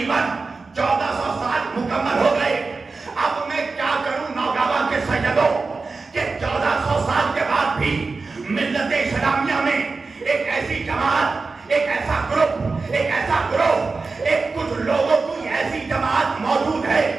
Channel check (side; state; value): left; quieter; 4.1 dB